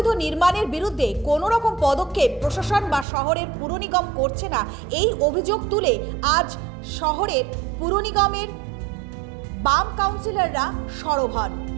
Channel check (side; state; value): left; drops out; at 3.1 s